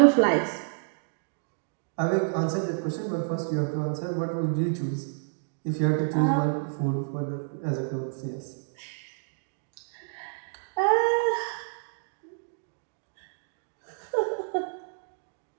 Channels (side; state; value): left; silent; digital silence